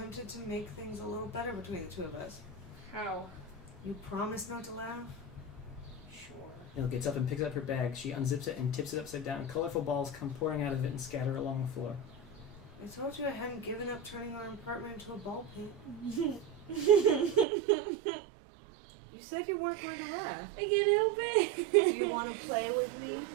to make things a little better between the two of us. How? You promise not to laugh? Sure. Nil gets up and picks up her bag. She unzips it and tips it upside down. Colorful balls come pouring out of it and scatter along the floor. I told you I hadn't given up turning our apartment into a ball pit. You said you weren't going to laugh. I can't help it. Do you want to play with me?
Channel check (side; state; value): left; drops out; at 17.4 s